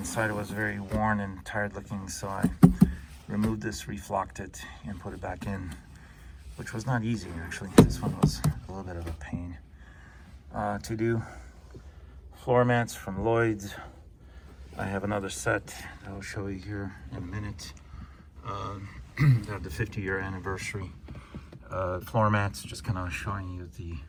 was very worn and tired looking, so I removed this, reflocked it, and put it back in, which was not easy actually. This one was a little bit of a pain to do. floor mats from Lloyd's. I have another set that I'll show you here in a minute. They have the 50-year anniversary floor mats, just kind of showing you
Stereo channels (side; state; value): both; identical; correlation 1.00